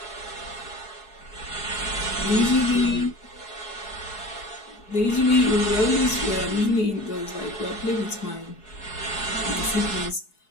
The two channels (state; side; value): late; right; 4.7 ms